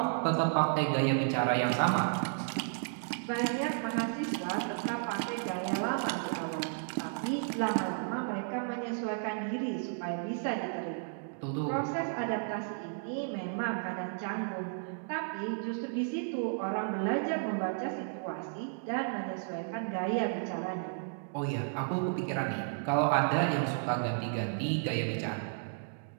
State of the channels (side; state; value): left; silent; digital silence